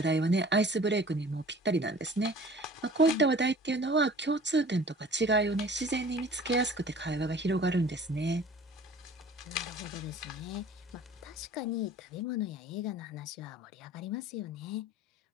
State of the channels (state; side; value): normal; both; correlation 0.46